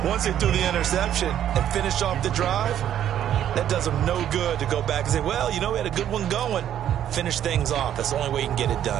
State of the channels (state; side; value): quieter; left; 10.6 dB